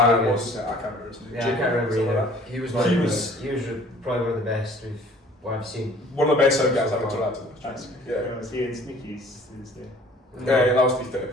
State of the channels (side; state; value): both; normal; correlation 0.52